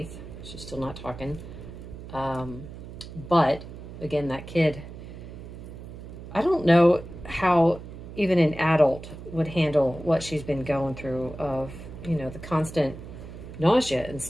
She's still not talking. But, again, that kid, I don't know how even an adult would handle what she's been going through of, the constant nausea and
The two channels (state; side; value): noise; right; hum, 13 dB below the sound